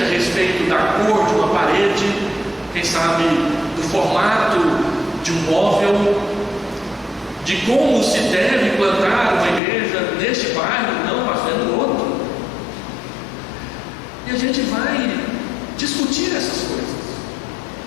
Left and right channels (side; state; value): right; drops out; at 9.6 s